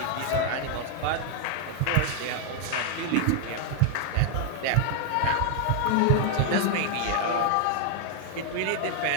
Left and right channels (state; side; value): different; both; correlation 0.00